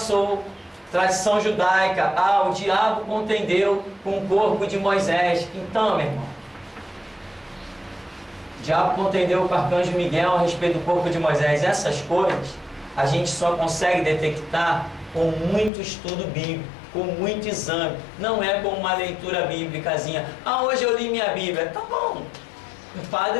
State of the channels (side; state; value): right; drops out; at 15.7 s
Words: Tradição judaica, o diabo contendeu com o corpo de Moisés. Então, meu irmão, o diabo contendeu com o arcanjo Miguel a respeito do corpo de Moisés. Essas coisas a gente só consegue detectar com muito estudo bíblico, com muito exame. Não é com uma leitura bíblicazinha. Hoje eu li minha Bíblia. Tá bom. O